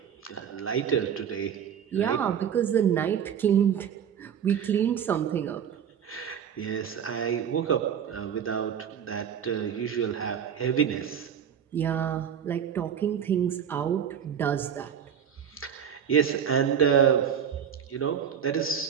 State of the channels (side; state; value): left; quieter; 8.3 dB